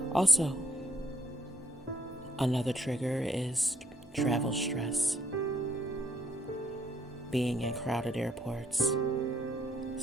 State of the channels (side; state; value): both; normal; correlation 0.67